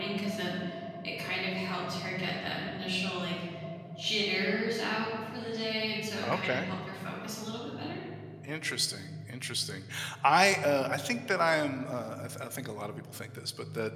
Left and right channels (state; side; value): identical; both; correlation 1.00